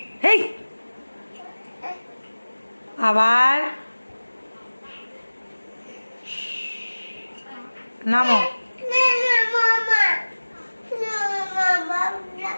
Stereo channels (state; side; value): inverted; both; correlation -1.00